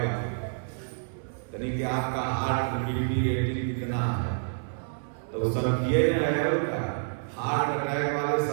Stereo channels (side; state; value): left; silent; 59 dB below the other